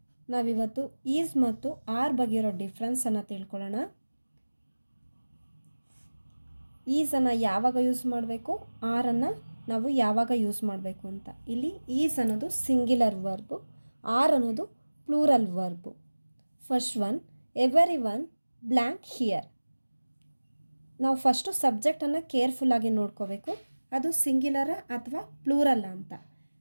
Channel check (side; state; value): both; inverted; correlation -1.00